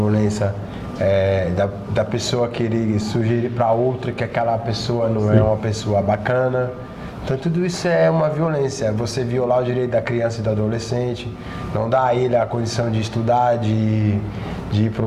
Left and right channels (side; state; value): both; identical; correlation 1.00